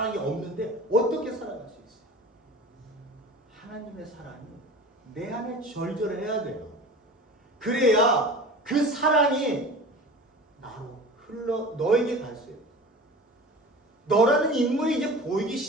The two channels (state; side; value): normal; both; correlation 0.37